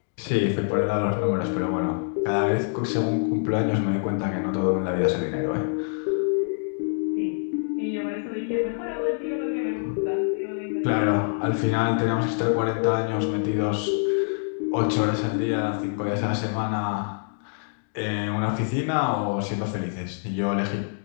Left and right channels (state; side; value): silent; right; 61 dB below the other